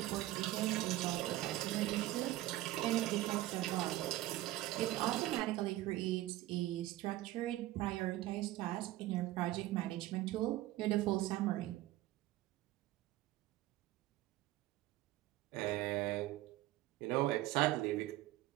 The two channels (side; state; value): left; quieter; 16.1 dB